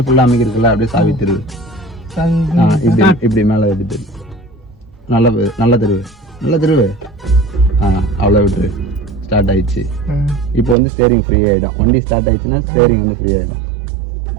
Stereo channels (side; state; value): left; drops out; at 10.8 s